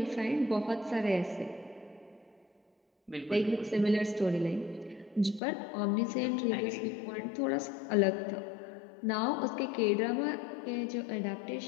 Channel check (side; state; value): right; drops out; at 5.4 s